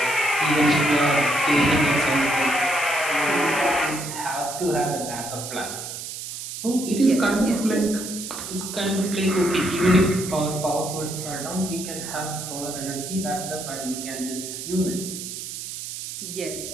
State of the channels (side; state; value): right; noise; hiss, 8 dB below the sound